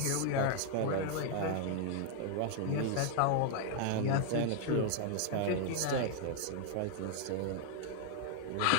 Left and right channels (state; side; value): different; both; correlation 0.00